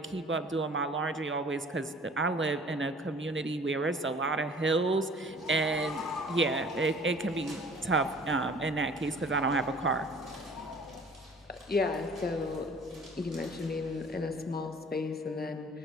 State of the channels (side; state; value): both; normal; correlation 0.50